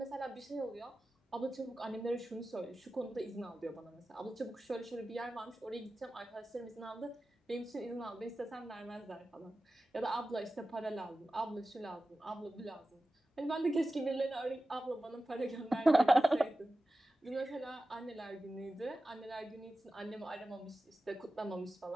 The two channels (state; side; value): normal; both; correlation 0.95